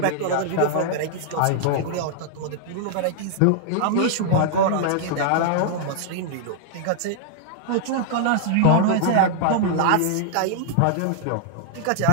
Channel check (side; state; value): both; different; correlation -0.01